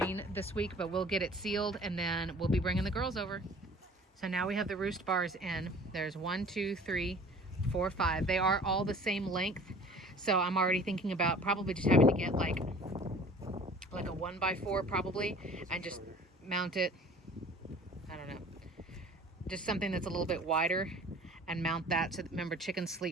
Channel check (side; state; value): both; normal; correlation 0.47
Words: this week, but we'll get it sealed and then we'll be bringing the girls over. So now we have the roost bars in. There's 1, 2, 3, 4, 5. They are all the same length. So I'm already thinking about probably just having to get like a 1x4 probably, and just mount it, I don't know, just something that's a little bit wider, and mount that. So remember, chickens